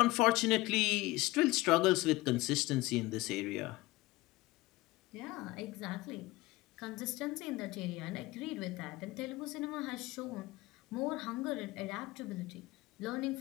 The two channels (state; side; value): quieter; right; 19.8 dB